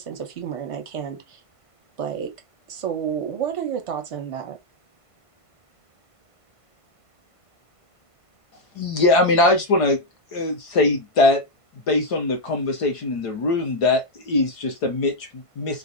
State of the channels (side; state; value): right; late; 1.5 ms